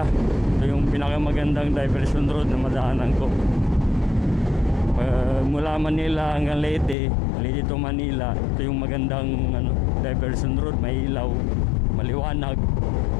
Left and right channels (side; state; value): right; drops out; at 7.0 s